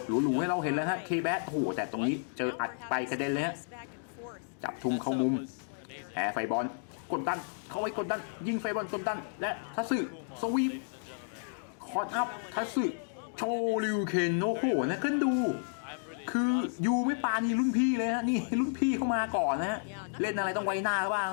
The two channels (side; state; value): right; silent; digital silence